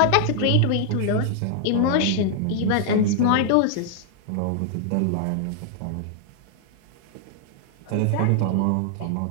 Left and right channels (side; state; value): both; different; correlation 0.00